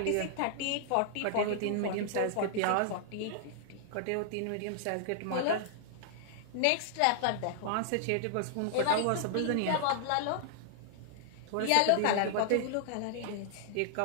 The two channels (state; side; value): different; both; correlation 0.00